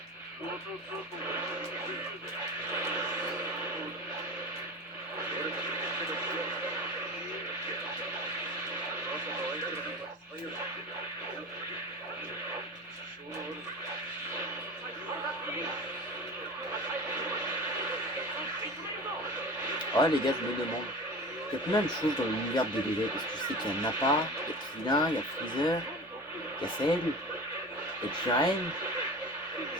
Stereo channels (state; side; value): normal; both; correlation 0.33